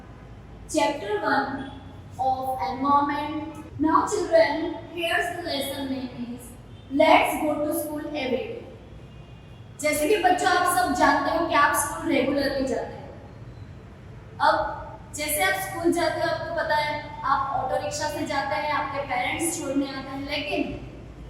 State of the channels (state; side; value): identical; both; correlation 1.00